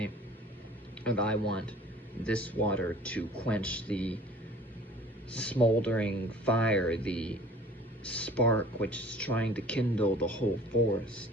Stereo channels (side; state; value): both; normal; correlation 0.48